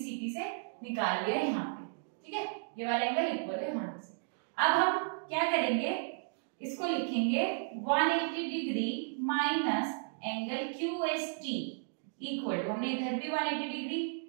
से निकाल लिया यहाँ पे, ठीक है, ये वाला एंगल इक्वल है यहाँ से। अब हम क्या करेंगे, इसको लिखेंगे 180 degree minus angle QST equal to, हमने इधर भी 180 डिग्री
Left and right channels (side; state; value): left; silent; digital silence